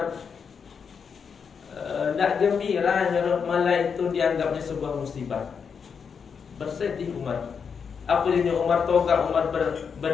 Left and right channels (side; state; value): right; quieter; 6.3 dB